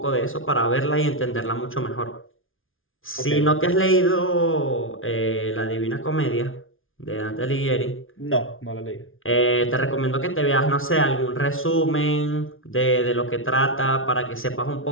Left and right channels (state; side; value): late; right; 0.59 ms